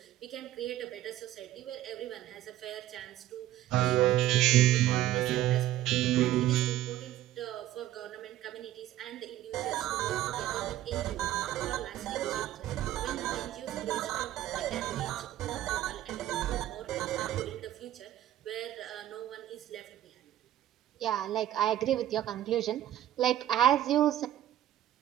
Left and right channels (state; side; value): quieter; left; 13.4 dB